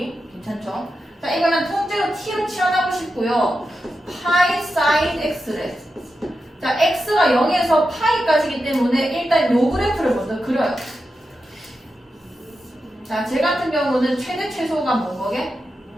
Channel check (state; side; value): normal; both; correlation 0.89